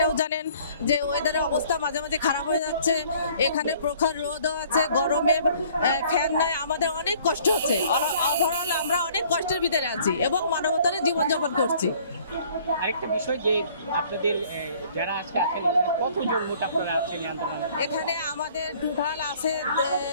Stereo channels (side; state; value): both; inverted; correlation -0.56